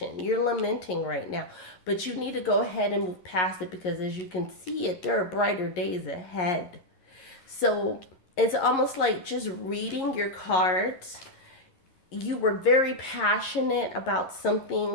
You're lamenting right now, but you need to go ahead and move past it because as you can see it, there are brighter days ahead. So it's almost like just reading your cards. You were very passionate about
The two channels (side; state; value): right; late; 11 ms